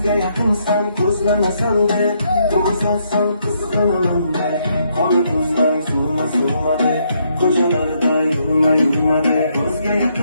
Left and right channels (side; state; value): both; inverted; correlation -0.74